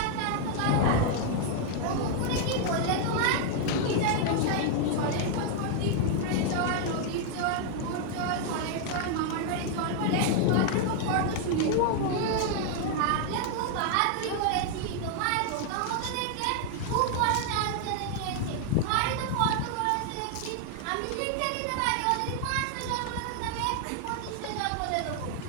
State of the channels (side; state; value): both; different; correlation 0.00